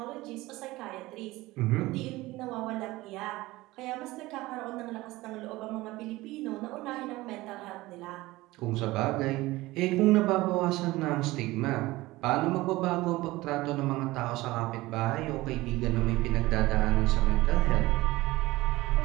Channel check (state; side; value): quieter; left; 19.3 dB